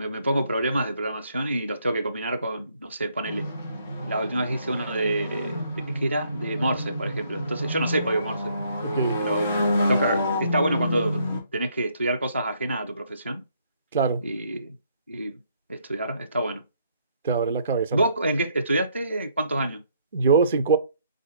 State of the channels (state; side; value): inverted; both; correlation -0.69